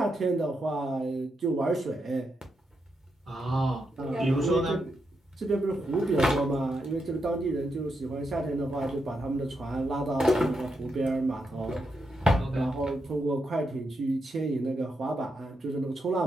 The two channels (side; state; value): both; normal; correlation 0.83